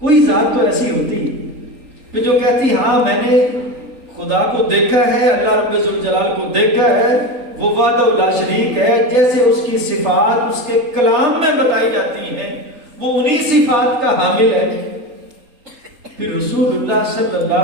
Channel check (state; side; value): late; left; 3.9 ms